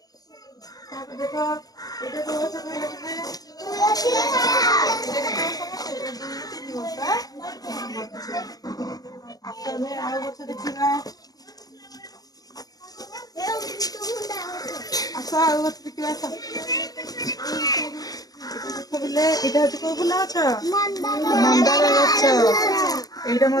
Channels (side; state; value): right; late; 0.18 ms